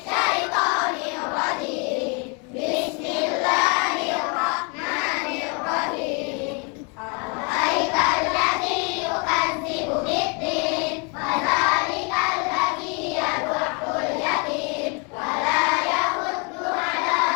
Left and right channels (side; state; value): right; quieter; 34.3 dB